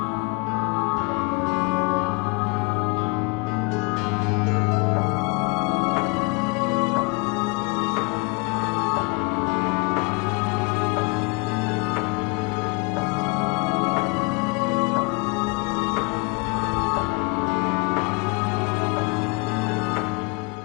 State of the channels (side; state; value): right; quieter; 29.0 dB